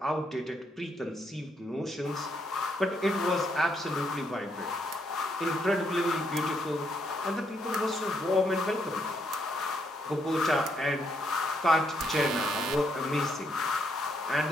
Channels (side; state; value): both; normal; correlation 0.75